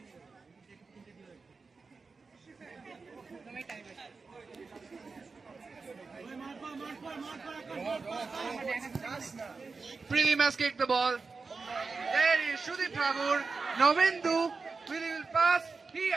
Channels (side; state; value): left; quieter; 4.4 dB